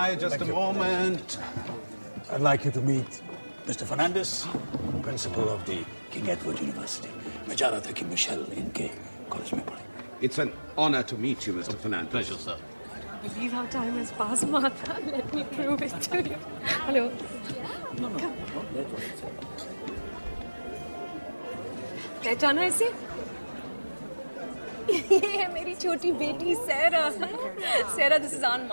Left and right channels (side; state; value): both; inverted; correlation -1.00